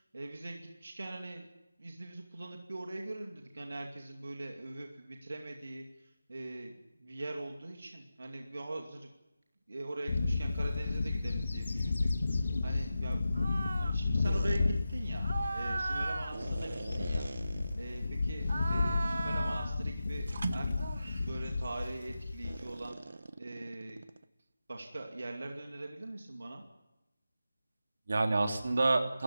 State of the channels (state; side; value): inverted; both; correlation -0.91